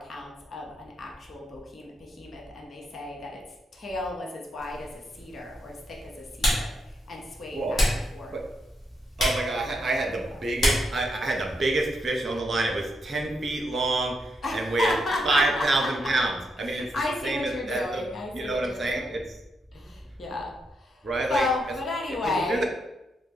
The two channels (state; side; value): normal; both; correlation 0.81